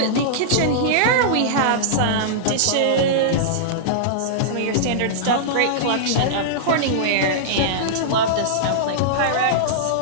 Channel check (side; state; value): both; different; correlation -0.02